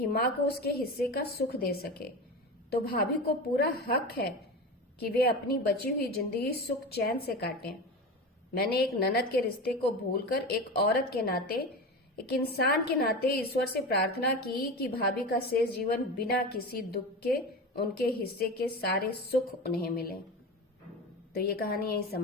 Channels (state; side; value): normal; both; correlation 0.26